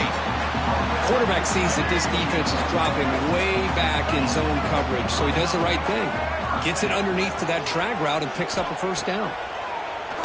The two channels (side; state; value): both; identical; correlation 1.00